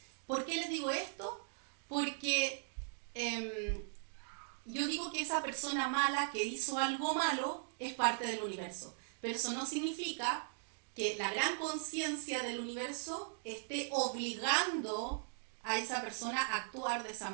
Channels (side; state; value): left; silent; digital silence